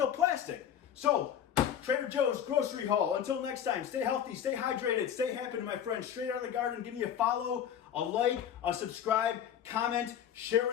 plastic. So, Trader Joe's grocery haul. Until next time, stay healthy, stay hydrated, stay happy, my friends. Straight out of the garden. Give me a follow, a like, a subscribe, comment, share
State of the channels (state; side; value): quieter; right; 9.3 dB